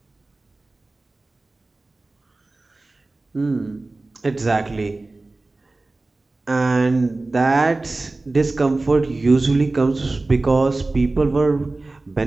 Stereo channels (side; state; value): left; quieter; 3.2 dB